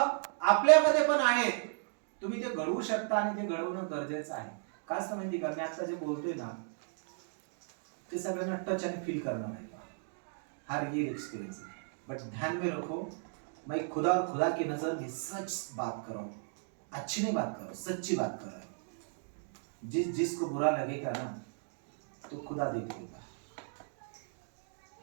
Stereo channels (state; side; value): silent; left; digital silence